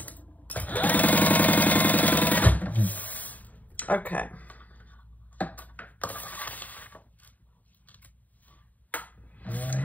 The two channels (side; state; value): right; late; 0.076 ms